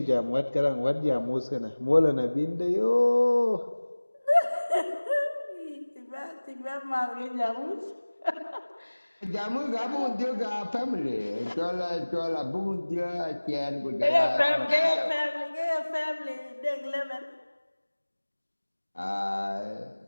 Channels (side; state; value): both; inverted; correlation -1.00